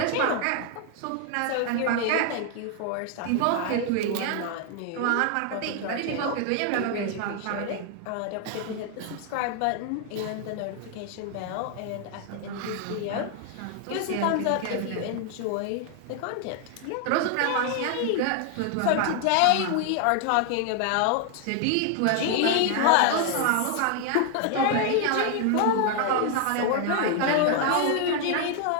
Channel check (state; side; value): different; both; correlation 0.00